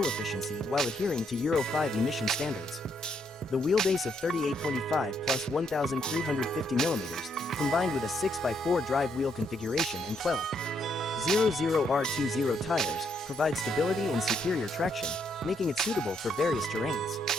efficiency while adhering to Euro 5 emission standards. The wheelbase of 38.5 plus 1,350 millimeters, combined with a 6x4 drive wheel configuration and 12.00R20 tires, provides stability and superior traction, making it suitable for various terrains.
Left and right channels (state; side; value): normal; both; correlation 0.75